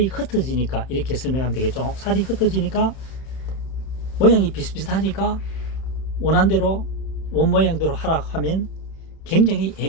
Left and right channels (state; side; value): late; right; 31 ms